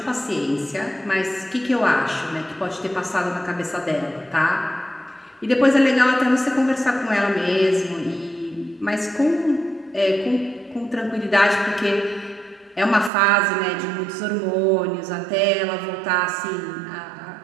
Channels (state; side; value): drops out; left; at 13.1 s